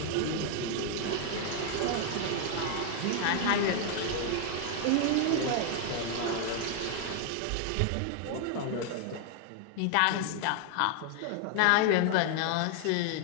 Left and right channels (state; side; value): different; both; correlation 0.00